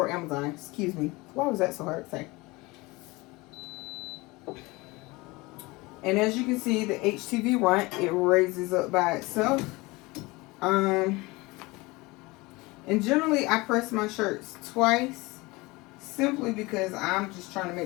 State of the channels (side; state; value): right; quieter; 23.0 dB